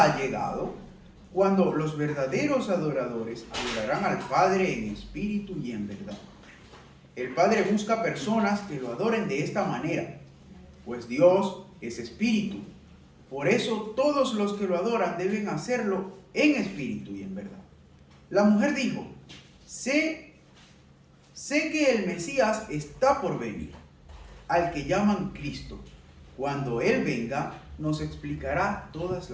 ha llegado, cuando los verdaderos adoradores adorarán al Padre en espíritu y en verdad. El Padre busca personas que lo adoren de esta manera, pues Dios es espíritu. Por eso todos los que lo adoran deben hacerlo en espíritu y en verdad. La mujer dijo, sé que el Mesías está por venir, al que llaman Cristo. Cuando Él venga, nos explicará todas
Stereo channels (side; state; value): both; identical; correlation 1.00